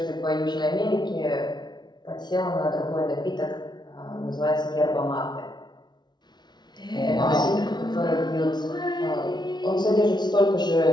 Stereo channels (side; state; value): right; late; 0.20 ms